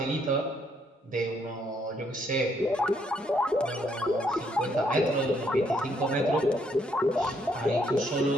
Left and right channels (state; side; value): normal; both; correlation 0.71